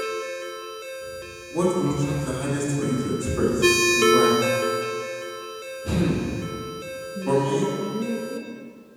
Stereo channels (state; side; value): identical; both; correlation 1.00